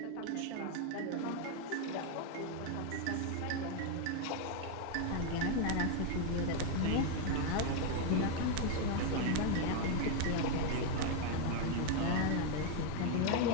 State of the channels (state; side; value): different; both; correlation 0.01